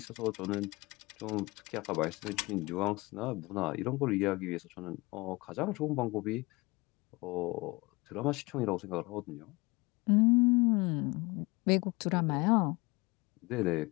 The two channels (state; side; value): quieter; right; 23.8 dB